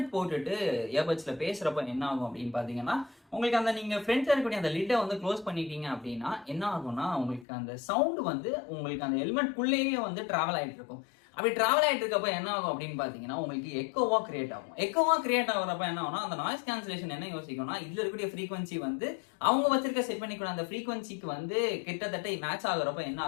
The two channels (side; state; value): right; drops out; at 7.5 s